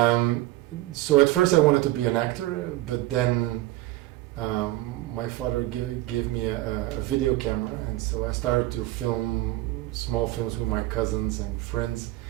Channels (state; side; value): quieter; left; 17.3 dB